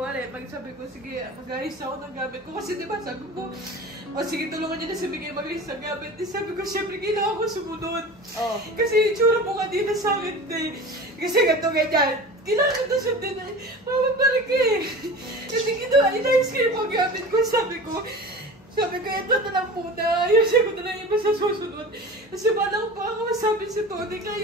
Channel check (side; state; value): both; normal; correlation 0.35